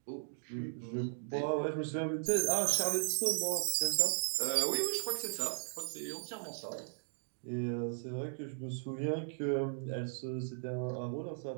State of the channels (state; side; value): silent; left; digital silence